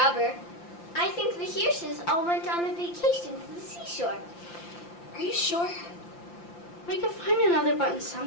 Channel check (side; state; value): right; late; 5.8 ms